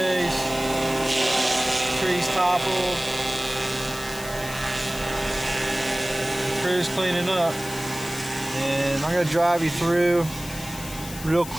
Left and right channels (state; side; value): noise; left; hiss, 12 dB below the sound